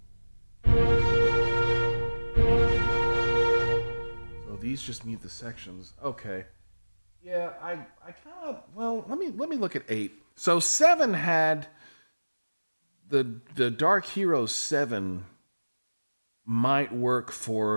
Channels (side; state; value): both; inverted; correlation -1.00